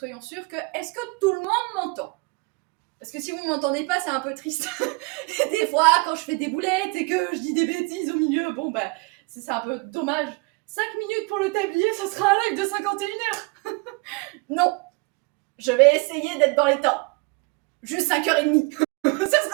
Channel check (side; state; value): left; quieter; 29.2 dB